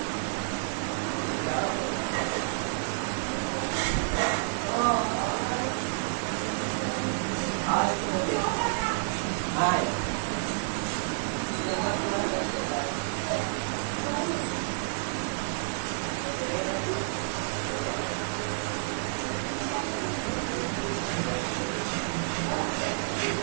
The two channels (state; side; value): silent; left; digital silence